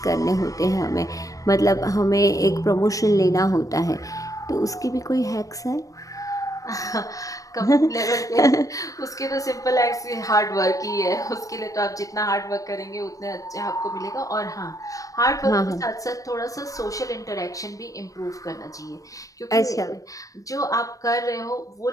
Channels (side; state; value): right; late; 0.16 ms